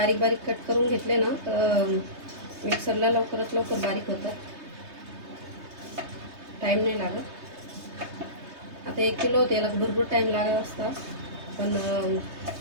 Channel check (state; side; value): late; left; 3.2 ms